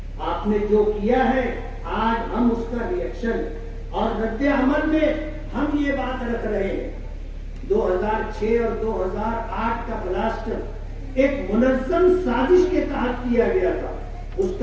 آپ نے جو کیا ہے آج ہم اس کا ریئیکشن اور رد عمل میں ہم یہ بات رکھ رہے ہیں. 2006 اور 2008 کا بلاسٹ ایک منظم سازش کے تحت کیا گیا تھا. اس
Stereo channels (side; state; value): both; identical; correlation 1.00